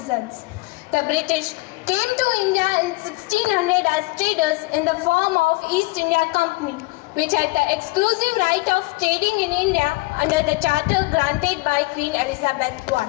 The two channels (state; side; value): quieter; right; 23.9 dB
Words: The British came to India in 1600 as traders in the form of East India Company, which had the exclusive right of trading in India under the charter granted by Queen Elizabeth I.